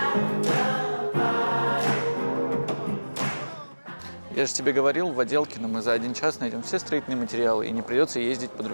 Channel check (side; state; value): both; inverted; correlation -1.00